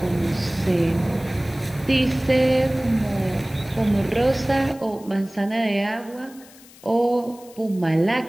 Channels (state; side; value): noise; left; hiss, 23 dB below the sound